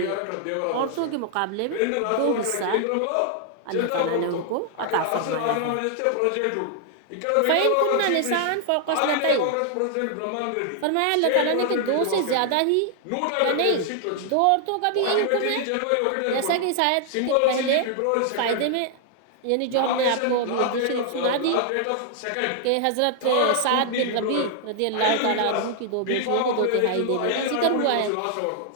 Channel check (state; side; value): different; both; correlation 0.00